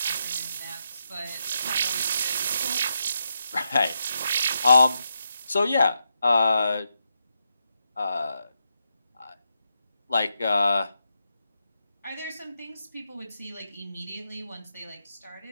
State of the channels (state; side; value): inverted; both; correlation -0.84